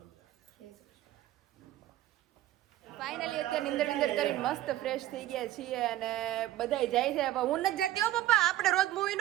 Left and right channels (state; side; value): quieter; left; 14.5 dB